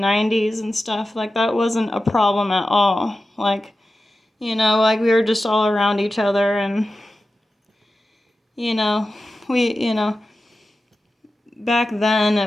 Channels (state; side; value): normal; both; correlation 0.93